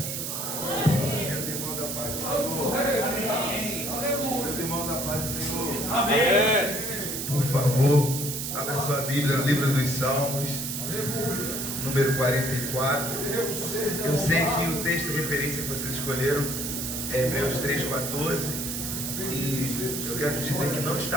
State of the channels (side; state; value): right; noise; hiss, 4 dB below the sound